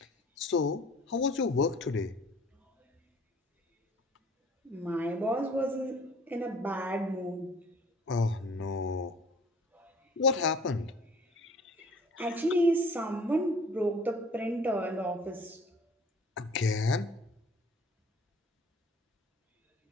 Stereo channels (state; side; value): normal; both; correlation 0.51